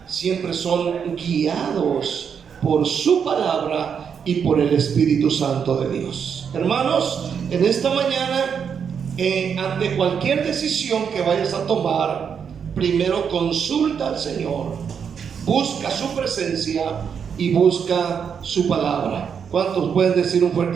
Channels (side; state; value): left; quieter; 7.1 dB